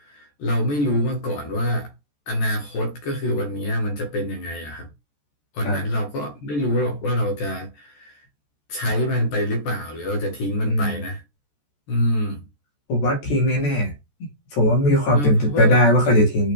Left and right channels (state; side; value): late; right; 14 ms